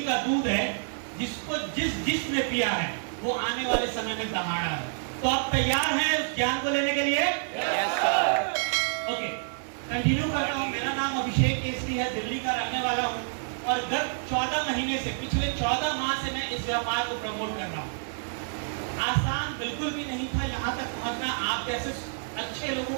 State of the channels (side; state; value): left; silent; 59 dB below the other